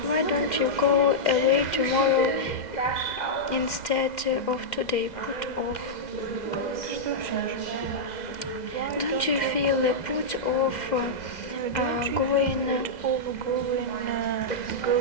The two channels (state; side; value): late; right; 2.0 ms